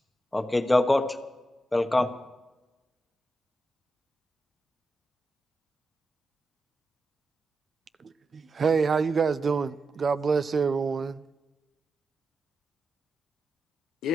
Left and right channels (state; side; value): normal; both; correlation 0.89